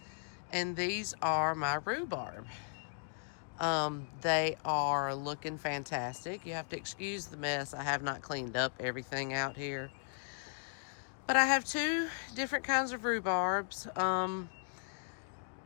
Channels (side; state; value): right; silent; digital silence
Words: and these are my rhubarb. They are looking fantastic. You have to excuse the mess. I have not cleaned up everything out here, but I have two different kinds of rhubarbs.